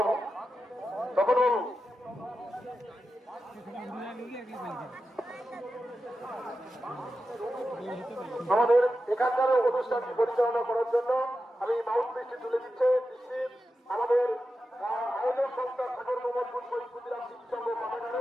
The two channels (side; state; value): both; normal; correlation 0.91